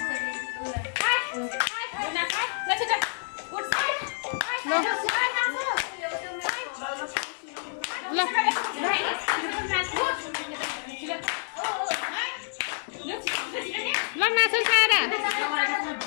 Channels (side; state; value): right; silent; digital silence